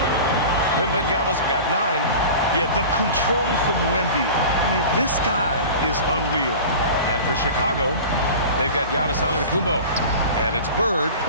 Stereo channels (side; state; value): both; inverted; correlation -0.36